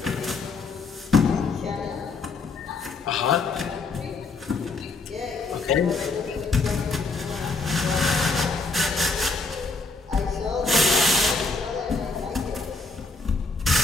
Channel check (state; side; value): quieter; right; 3.8 dB